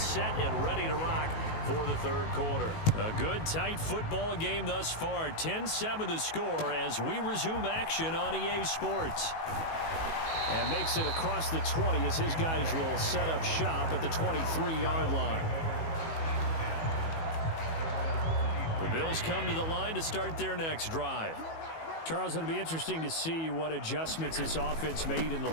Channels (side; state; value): right; late; 19 ms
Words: and ready to rock for the third quarter. A good, tight football game thus far. 10-7 the score as we resume action on EA Sports. And makes it across the 20 as his guys will set up shop at the 23-yard line. The Bills come to the line to start their next drive. Charles, it'll be interesting to see what adjustments this offense made in the